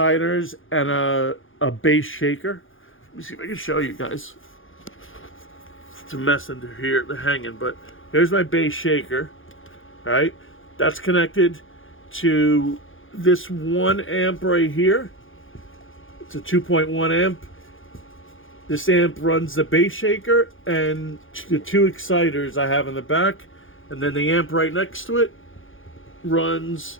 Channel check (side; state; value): right; late; 0.58 ms